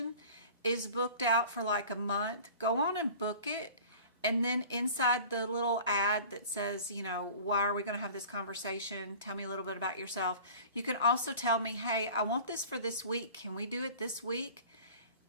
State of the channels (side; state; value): both; inverted; correlation -0.42